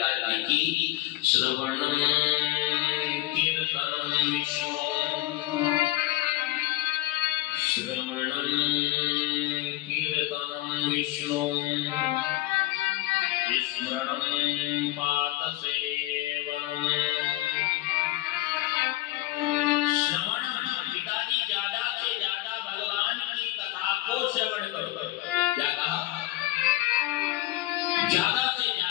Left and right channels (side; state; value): right; quieter; 17.1 dB